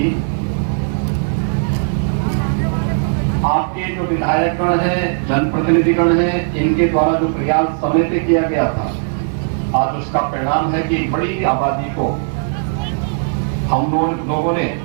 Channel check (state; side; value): silent; left; 61 dB below the other